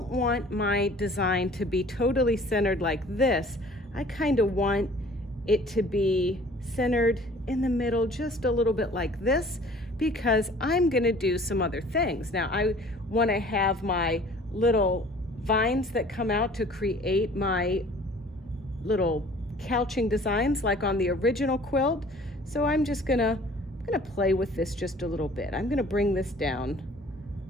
want my design to be totally centered like this. I kind of want it to be centered in the middle just a little bit like this, because I'm going to do some other things. Now I want to have my little vines that come out to create my little couching designs like on the original quilt. So I'm just gonna play with this just a little bit. I'm gonna bring this down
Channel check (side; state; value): both; normal; correlation 0.50